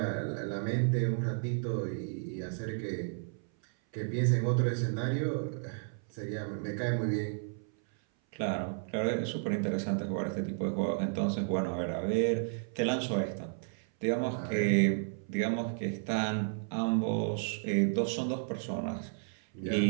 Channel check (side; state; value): left; silent; 56 dB below the other